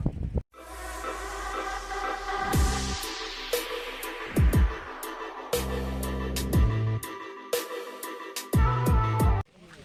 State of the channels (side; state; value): both; identical; correlation 1.00